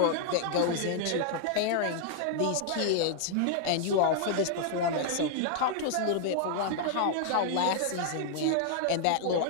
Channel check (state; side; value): different; both; correlation 0.00